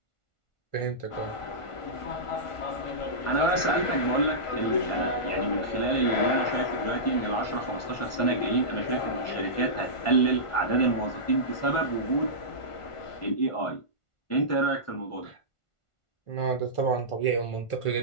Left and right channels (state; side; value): late; right; 1.4 ms